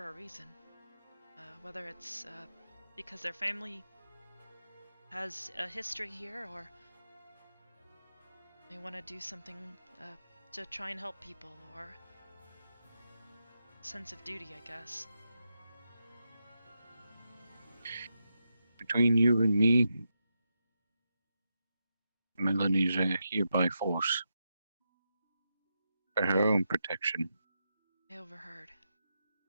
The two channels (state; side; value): inverted; both; correlation -0.87